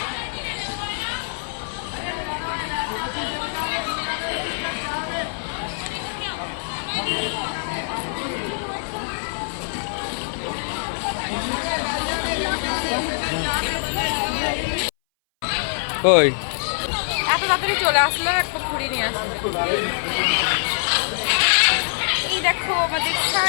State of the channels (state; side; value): silent; right; 60 dB below the other